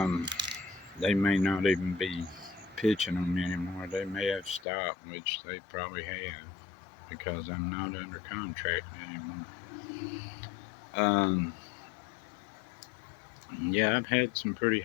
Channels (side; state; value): right; drops out; at 4.7 s